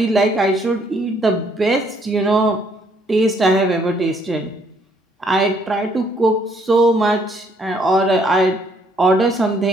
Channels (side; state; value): both; normal; correlation 0.67